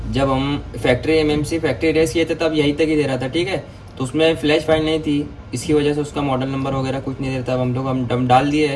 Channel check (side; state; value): both; identical; correlation 1.00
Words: जब हम फैक्ट्री रेस किए थे तब यहीं तक ही दे रहा था, ठीक है। तो उसमें फ्लैश फाइल नहीं थी, इसकी वजह से उसका मॉडल नंबर वगैरह कुछ नहीं दे रहा था। अब हम डम डाल दिए